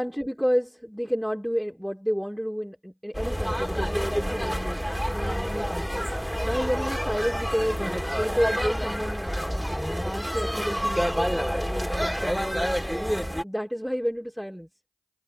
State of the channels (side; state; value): both; identical; correlation 1.00